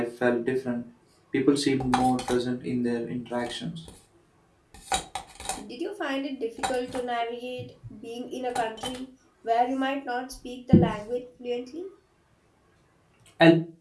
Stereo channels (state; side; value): identical; both; correlation 1.00